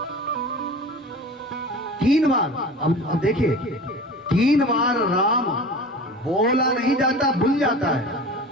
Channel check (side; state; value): both; normal; correlation 0.37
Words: तीन बार, अब देखिए, तीन बार राम बोला नहीं जाता, भूल जाता है।